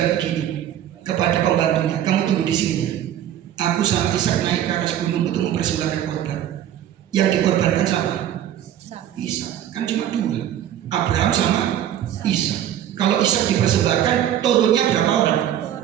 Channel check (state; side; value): quieter; left; 11.1 dB